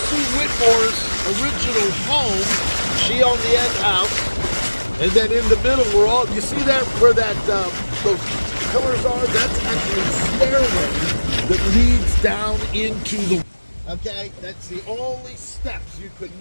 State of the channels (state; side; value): inverted; both; correlation -1.00